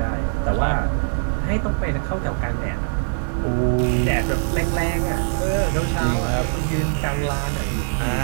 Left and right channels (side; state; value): left; silent; digital silence